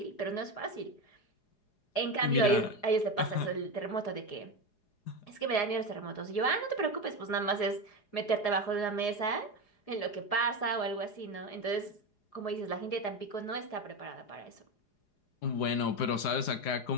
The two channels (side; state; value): right; late; 4.8 ms